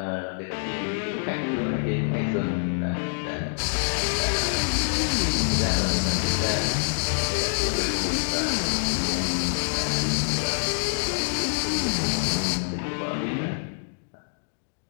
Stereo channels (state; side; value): silent; right; digital silence